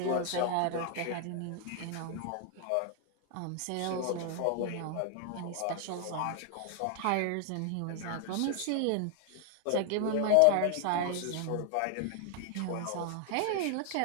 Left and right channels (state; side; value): different; both; correlation 0.00